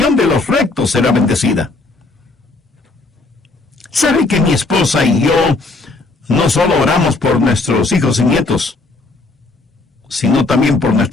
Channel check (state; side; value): quieter; right; 3.4 dB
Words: de los rectos será bendecida. ¿Sabe que mi esposa y yo no solo oramos por nuestros hijos y nietos, sino también por